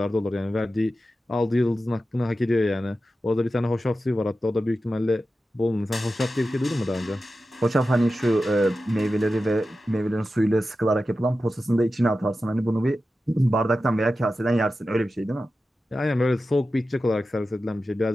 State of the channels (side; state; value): both; normal; correlation 0.93